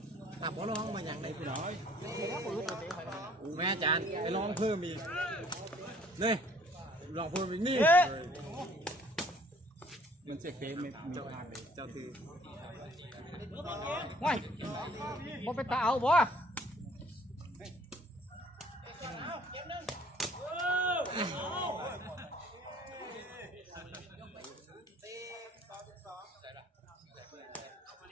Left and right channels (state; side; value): normal; both; correlation 0.57